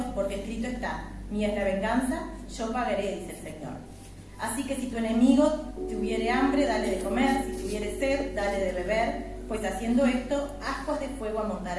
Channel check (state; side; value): identical; both; correlation 1.00